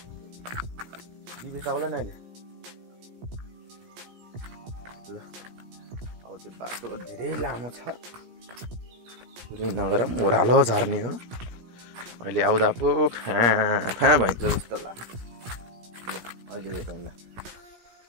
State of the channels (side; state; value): left; late; 17 ms